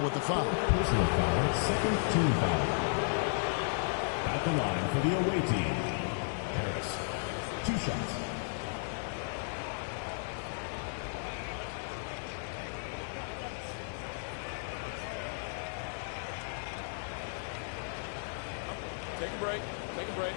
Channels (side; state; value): right; silent; digital silence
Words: with the foul. Personal foul, second team foul. At the line for the away team, Harris. 2 shots. Take a break. Take a break.